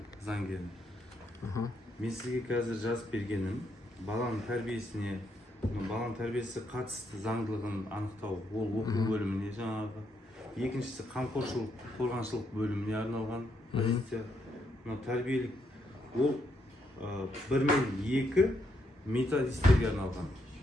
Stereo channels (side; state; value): both; normal; correlation 0.77